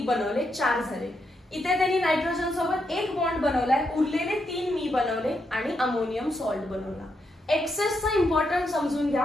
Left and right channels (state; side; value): normal; both; correlation 0.81